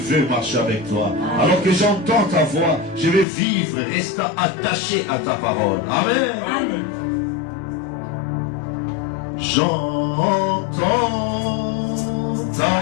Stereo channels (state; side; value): drops out; right; at 3.2 s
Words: marcher avec toi. Alors que j'entends ta voix, je vais vivre, rester attaché à ta parole. Amen. Amen. J'entends